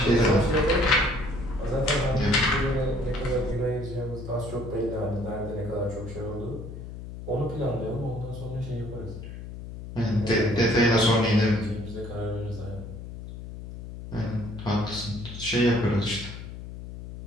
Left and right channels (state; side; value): noise; left; hum, 11 dB below the sound